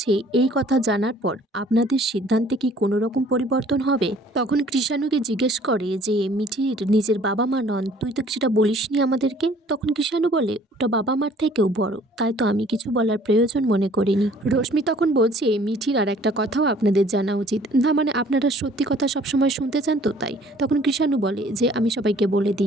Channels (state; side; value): normal; both; correlation 0.55